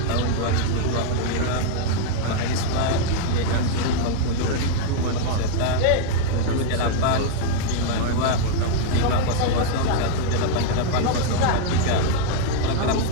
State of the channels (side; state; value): both; different; correlation 0.00